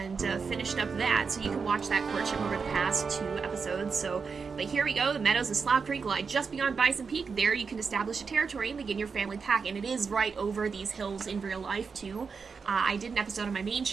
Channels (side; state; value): left; quieter; 5.3 dB